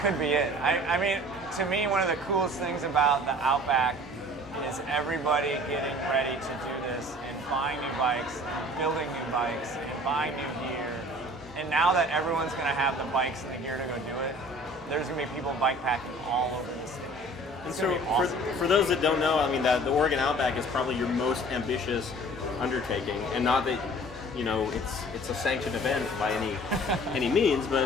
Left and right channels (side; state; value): both; normal; correlation 0.47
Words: could be it. I mean, to me, one of the coolest things about the Outback is everybody getting ready to do this and buying new bikes, building new bikes, and buying new gear. And now that everyone's going to have the bikes and the gear to go do it, there's going to be people bike packing all over the state. It's so awesome. for those that don't know, I mean, the Oregon Outback is probably your most ambitious undertaking, and not that it's a sanctioned event by any means,